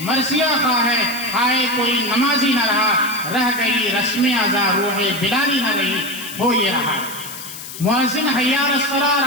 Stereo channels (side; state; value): left; noise; hiss, 11 dB below the sound